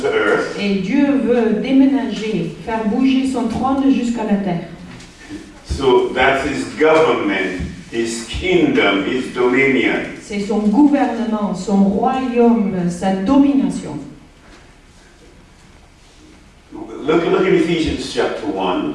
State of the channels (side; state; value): both; identical; correlation 1.00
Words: earth. Et Dieu veut déménager, faire bouger son trône jusqu'à la terre. So that's his government, his kingdom, his dominion. C'est son gouvernement, son royaume, sa domination. Look in Ephesians chapter